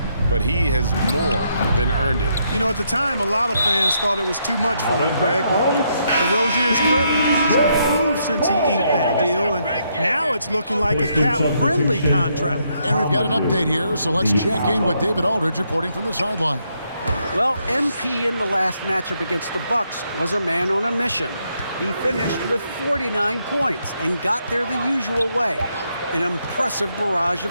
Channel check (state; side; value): inverted; both; correlation -0.76